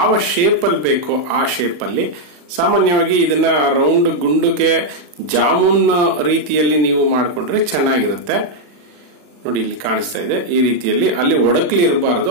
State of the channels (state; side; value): late; left; 40 ms